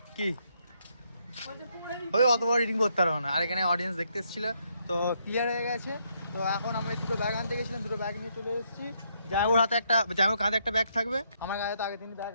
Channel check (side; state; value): both; inverted; correlation -0.74